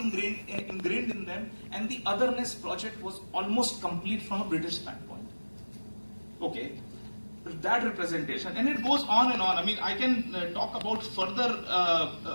in them, and the otherness project was almost complete from a British standpoint. Okay, that representation, and it goes on and on. I mean, I can talk about further,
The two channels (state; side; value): inverted; both; correlation -1.00